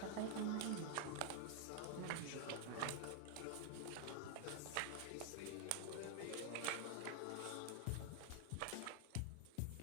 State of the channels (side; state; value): both; different; correlation 0.00